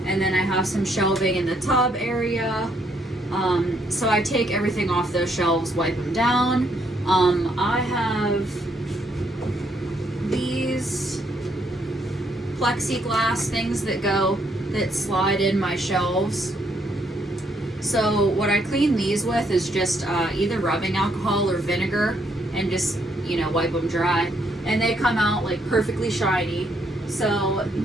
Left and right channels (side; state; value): both; normal; correlation 0.72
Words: and then I have some shelving in the tub area. So I take everything off those shelves, wipe them down. I have these plexiglass things that slide in my shelves. So what I clean these with is just either rubbing alcohol or vinegar, and just, you know, wipe them dry. And they come out like perfectly shiny. So